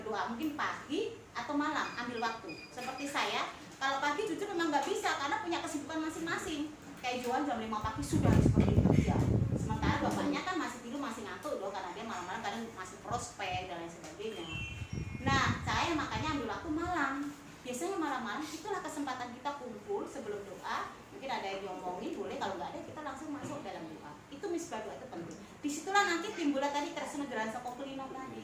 mungkin pagi atau malam, ambil waktu. Seperti saya, kalau pagi jujur memang nggak bisa karena punya kesibukan masing-masing. Kayak Johan jam 5 pagi sudah seperti itu kerja. Sementara bapaknya kan masih tidur, masih ngantuk loh, karena dia malam-malam kadang masih prospek dan lain sebagainya. Nah, saya makanya ambil waktu malam. Biasanya malam-malam itulah kesempatan kita kumpul sebelum doa. Mungkin ada yang diomongin, boleh, kalau nggak ada kita langsung masuk dalam doa. Itu misbah doa itu penting. Disitulah nanti timbullah tadi Tresna Kokelino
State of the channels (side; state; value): both; identical; correlation 1.00